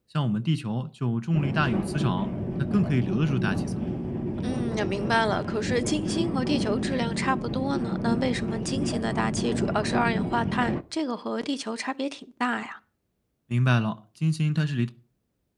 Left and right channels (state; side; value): identical; both; correlation 1.00